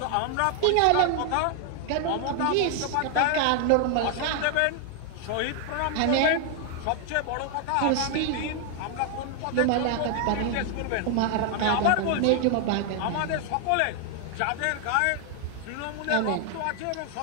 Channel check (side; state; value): both; different; correlation 0.00